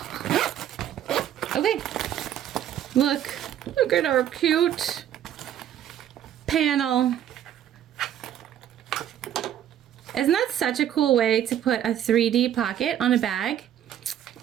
Okay, look at our cute panel. Isn't that such a cool way to put a 3D pocket on a bag?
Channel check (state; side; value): quieter; left; 10.7 dB